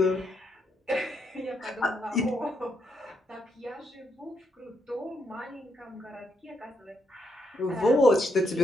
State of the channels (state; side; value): normal; both; correlation 0.78